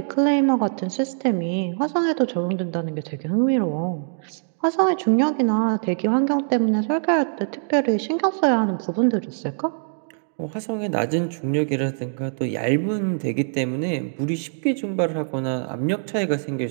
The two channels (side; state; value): left; silent; digital silence